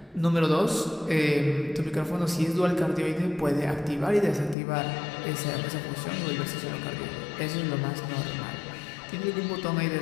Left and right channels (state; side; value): drops out; right; at 4.5 s